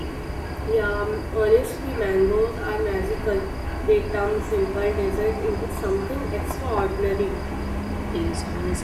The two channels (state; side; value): identical; both; correlation 1.00